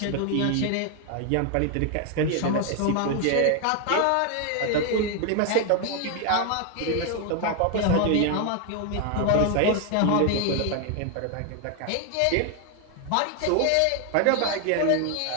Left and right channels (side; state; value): both; different; correlation 0.00